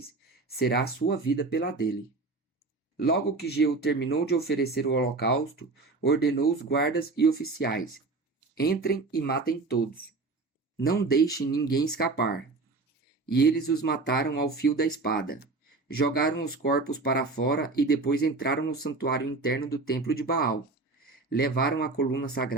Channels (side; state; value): left; quieter; 3.6 dB